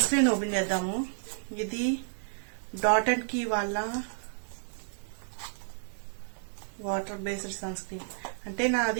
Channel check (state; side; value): silent; left; 57 dB below the other